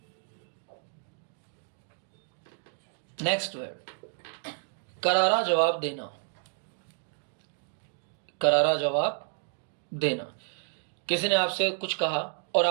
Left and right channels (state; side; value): silent; left; 57 dB below the other